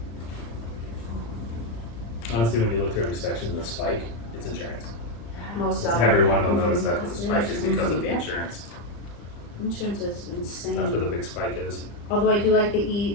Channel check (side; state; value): right; late; 35 ms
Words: Honestly, when you look through every section, the spike, it's insurance. Most of Everyone will notice that the spike is because of the insurance. insurance is insane. That's where the big spike is. Although I do like